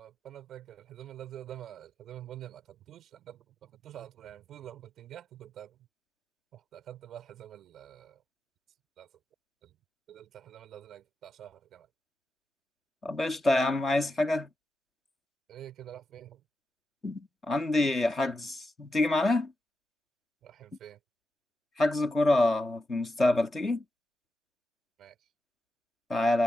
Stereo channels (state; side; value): normal; both; correlation 0.89